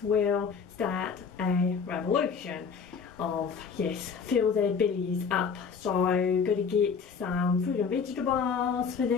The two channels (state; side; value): quieter; right; 5.9 dB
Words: will start a revolution of, yes, fill their bellies up. So, got to get some fruit and vegetables for